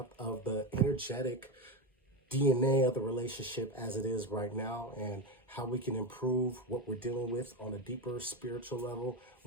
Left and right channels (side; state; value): both; normal; correlation 0.16